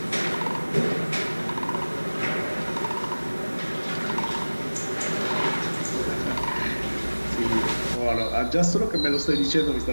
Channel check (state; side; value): inverted; both; correlation -1.00